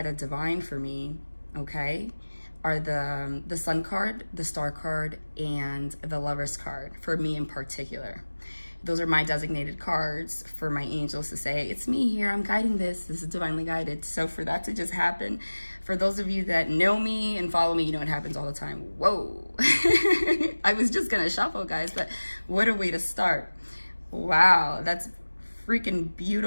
the divine for me, okay, are the sun card, the star card, and the lover's card, for me in particular. Those are my designated cards for my angels to say, it's me here, I'm guiding this, this is divinely guided. So for that to just happen, for those of you that know me and follow me, you know it happens all the time. Whoa. I was just gonna shuffle, guys, but what a way to start. Wow, that's freaking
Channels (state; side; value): inverted; both; correlation -1.00